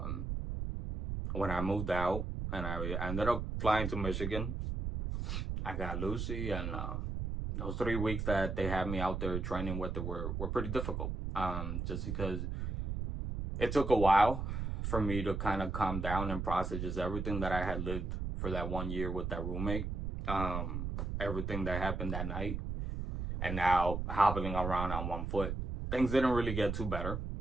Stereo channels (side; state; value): right; noise; rumble, 3 dB below the sound